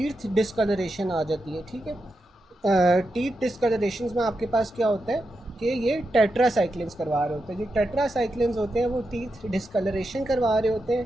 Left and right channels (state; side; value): normal; both; correlation 0.87